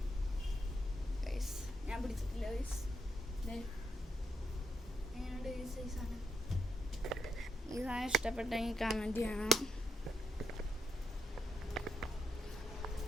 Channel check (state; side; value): normal; both; correlation 0.81